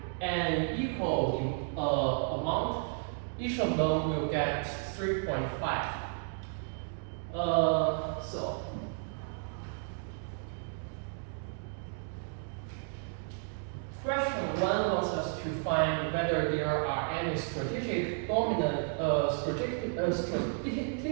equal amount, each of them will get 3.5. So question 1 wants us to find whether there are any strategically dominant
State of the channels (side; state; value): left; silent; 56 dB below the other